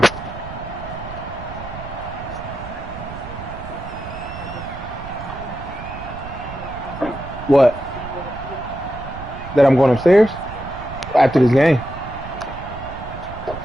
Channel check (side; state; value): right; noise; rumble, 11 dB below the sound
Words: What? That I'm going upstairs? After this game.